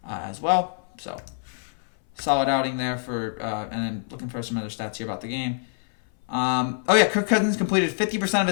as well. So solid outing there for, and then looking for some other stats here about the game. Kirk Cousins completed 50% of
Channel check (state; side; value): silent; right; 61 dB below the other